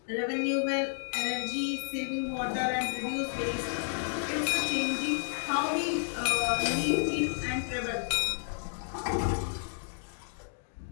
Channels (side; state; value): right; silent; digital silence